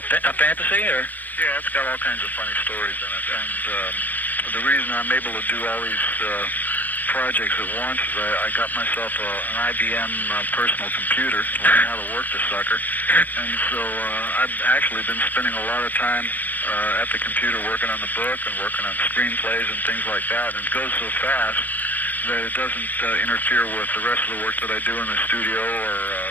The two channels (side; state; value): right; late; 0.087 ms